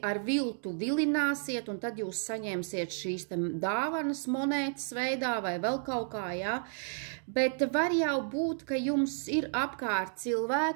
ar viltu vilināsiet, un tad jūs saņemsiet šīs dāvanas monētas veidā vai vēl kaut kā, jā. Bet var jau būt, ka jums ir apkārt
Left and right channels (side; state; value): left; silent; digital silence